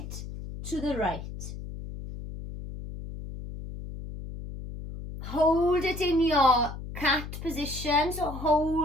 to the right. Hold it in your cat position. So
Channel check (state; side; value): noise; left; hum, 10 dB below the sound